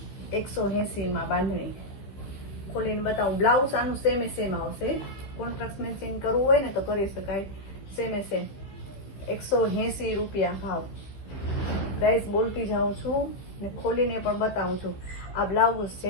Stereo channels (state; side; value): late; right; 15 ms